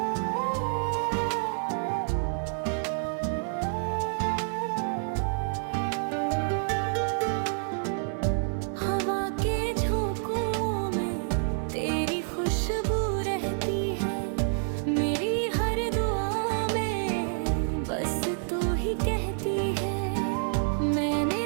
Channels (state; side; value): silent; left; digital silence